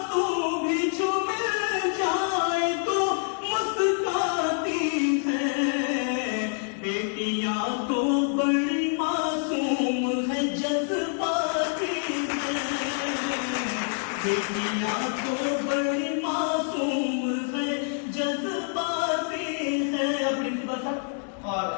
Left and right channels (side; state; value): right; silent; 58 dB below the other